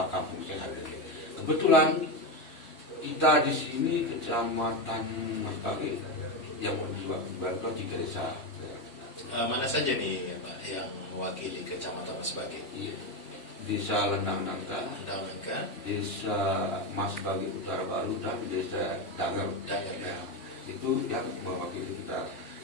kampung sehat. Kebetulan kita di sini kecamatan Mas Bagi yang menjual 3 desa. Mana saja nih Pak yang mewakili Kecamatan Mas Bagi? Desa Lendang Nangka, Desa Mas Bagi Utara Baru, dan Desa Danger. Ya, itu yang mewakili kita.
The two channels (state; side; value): late; right; 3.1 ms